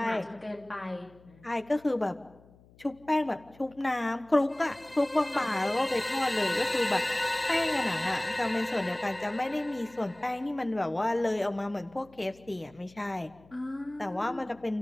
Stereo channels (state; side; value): noise; left; hum, 26 dB below the sound